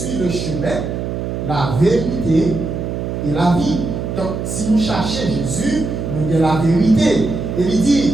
le chemin, la vérité et la vie. Donc, si vous cherchez Jésus, nous avons la vérité. Et il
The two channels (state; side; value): noise; right; hum, 4 dB below the sound